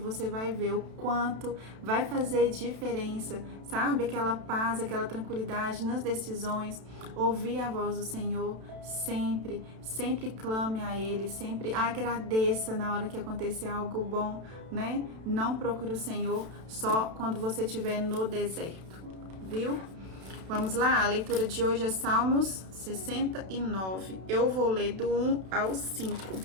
vai ver o quanto vai fazer diferença, aquela paz, aquela tranquilidade nas decisões. Ouvir a voz do Senhor sempre, sempre clame a Ele, sempre agradeça na hora que acontecer algo bom, né? Não procure o Senhor só quando você estiver no deserto, viu? Vamos lá, a leitura de hoje é Salmos 69. Eu vou ler do 1 ao 5.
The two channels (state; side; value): late; left; 32 ms